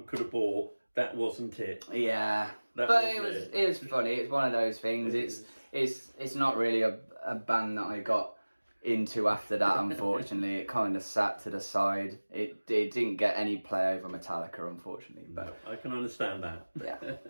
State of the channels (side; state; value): both; inverted; correlation -1.00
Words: could have bought, that wasn't it. Yeah, but it was funny. It's one of those things. It's not really a band that I got into after that. Unfortunately, it kind of sat to the side. It didn't get any play over Metallica, unfortunately. But I can understand that. Yeah.